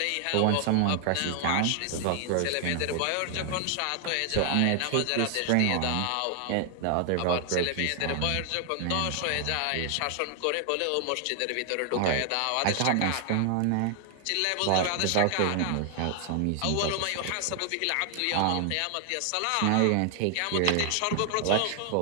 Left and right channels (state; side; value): different; both; correlation 0.00